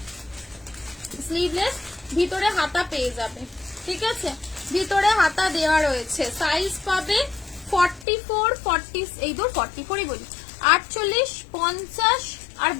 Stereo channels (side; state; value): right; drops out; at 8.1 s